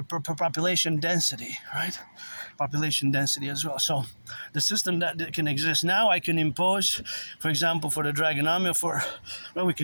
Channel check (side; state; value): both; inverted; correlation -1.00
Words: density, right? Population density as well. So the system that can exist now, I can impose, for example, for the Dragon Army, we